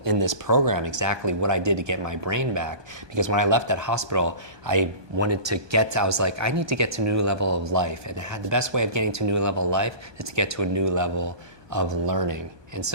in this program exactly what I did to get my brain back. Because when I left that hospital, I was like, I need to get to a new level of life. And the best way of getting to a new level of life is to get to a new level of learning. And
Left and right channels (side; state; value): left; late; 1.2 ms